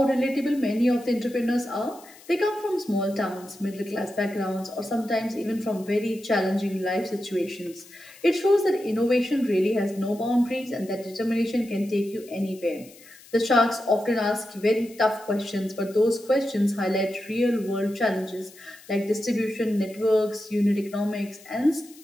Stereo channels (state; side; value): noise; left; hiss, 22 dB below the sound